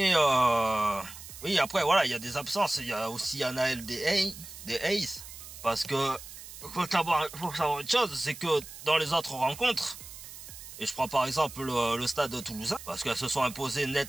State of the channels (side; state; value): right; noise; hiss, 14 dB below the sound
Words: oui, après voilà, il y a des absences. Il y a aussi Anaël des Hayes. Parce que faut savoir une chose, c'est que dans les autres rencontres, et je prends par exemple le stade toulousain, parce qu'elles se sont imposées